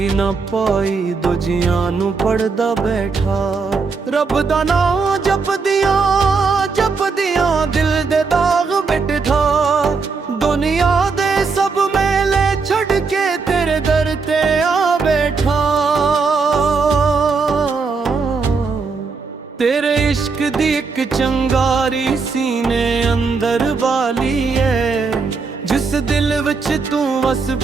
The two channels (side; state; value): left; quieter; 4.7 dB